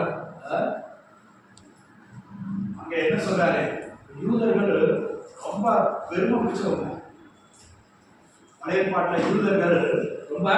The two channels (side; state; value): both; identical; correlation 1.00